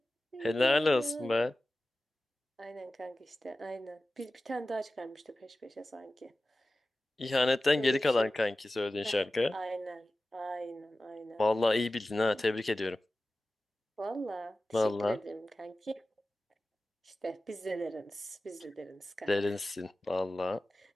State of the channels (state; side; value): normal; both; correlation 0.95